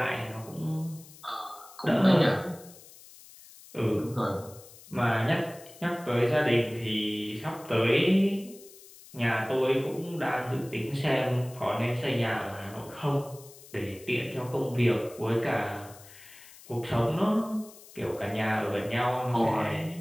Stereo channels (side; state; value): left; noise; hiss, 20 dB below the sound